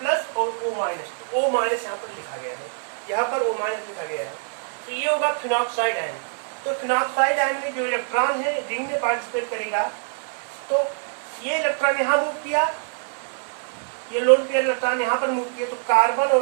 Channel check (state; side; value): silent; left; 57 dB below the other